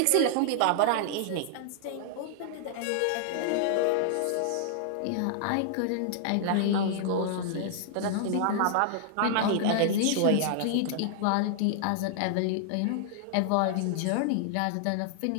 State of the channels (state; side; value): different; both; correlation -0.01